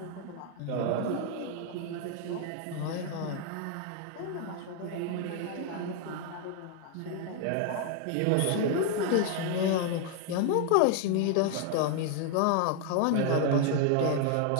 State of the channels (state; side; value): different; both; correlation 0.00